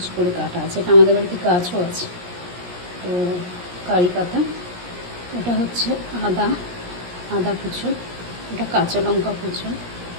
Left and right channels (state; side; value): late; left; 17 ms